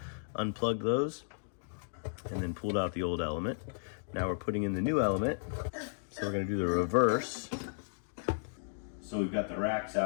Unplugged those and then pulled out the old element. Now we're putting in the new element. So we're gonna do the reverse. So we've got the racks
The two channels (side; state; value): right; silent; digital silence